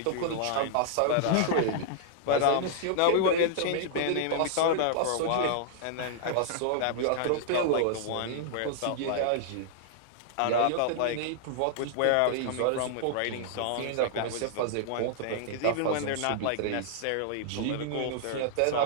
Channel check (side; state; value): both; different; correlation -0.01